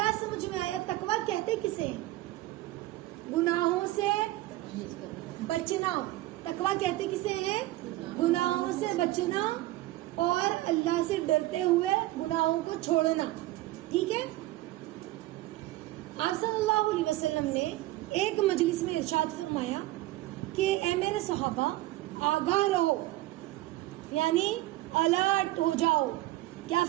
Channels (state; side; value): quieter; left; 17.2 dB